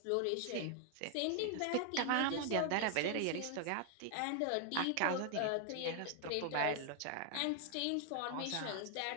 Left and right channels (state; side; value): different; both; correlation 0.00